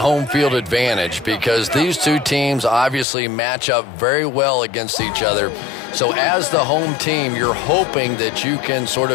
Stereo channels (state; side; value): drops out; right; at 3.1 s